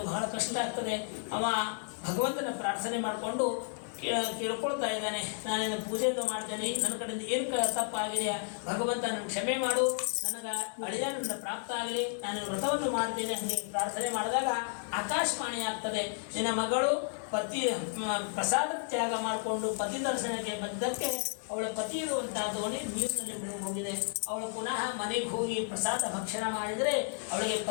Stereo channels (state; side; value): silent; right; 56 dB below the other